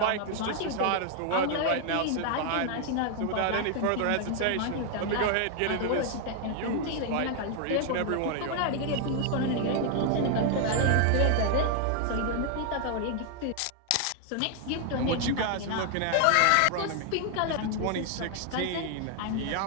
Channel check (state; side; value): different; both; correlation 0.00